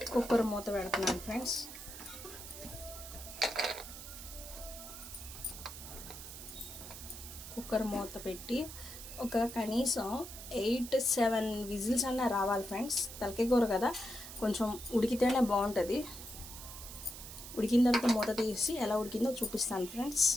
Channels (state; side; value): noise; right; hiss, 12 dB below the sound